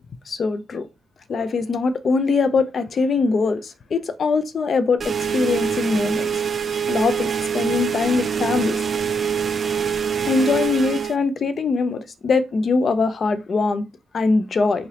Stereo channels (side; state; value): both; normal; correlation 0.79